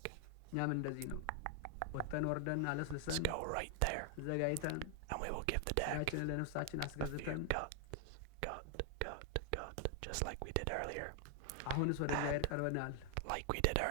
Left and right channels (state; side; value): different; both; correlation 0.00